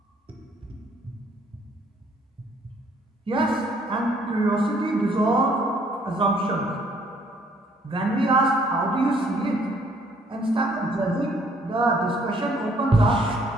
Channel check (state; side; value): normal; both; correlation 0.63